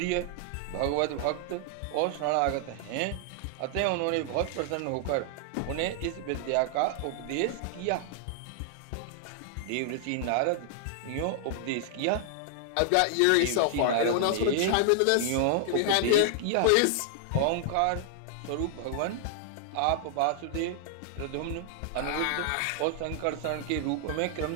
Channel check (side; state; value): both; different; correlation -0.01